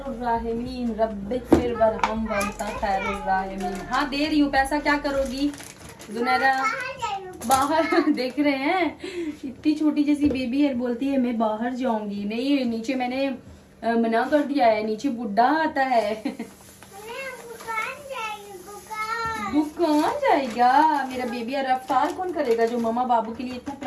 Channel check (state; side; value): identical; both; correlation 1.00